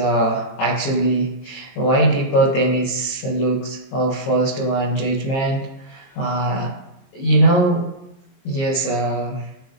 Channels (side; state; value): right; late; 22 ms